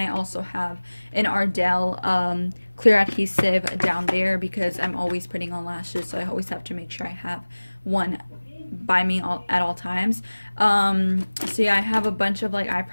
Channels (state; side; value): inverted; both; correlation -1.00